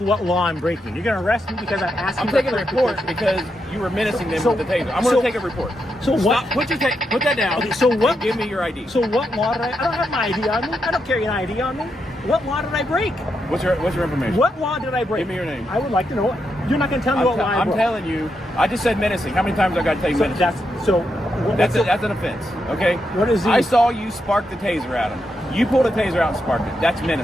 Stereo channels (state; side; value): normal; both; correlation 0.83